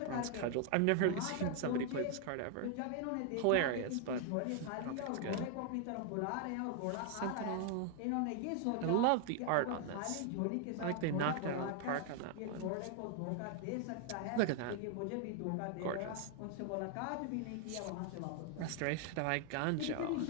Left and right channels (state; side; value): different; both; correlation 0.00